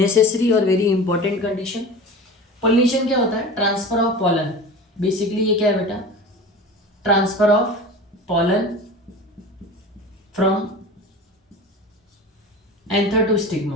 और वेरी इंपॉर्टेंट कंडीशन। पॉलिनेशन क्या होता है? ट्रांसफर ऑफ पॉलन बेसिकली ये क्या है बेटा, transfer of pollen from anther to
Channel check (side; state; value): both; normal; correlation 0.34